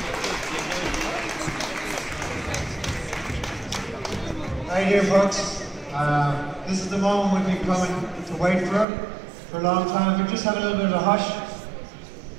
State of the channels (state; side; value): drops out; left; at 8.8 s